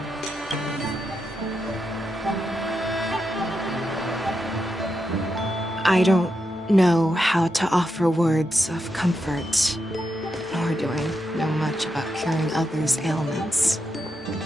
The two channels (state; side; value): normal; both; correlation 0.85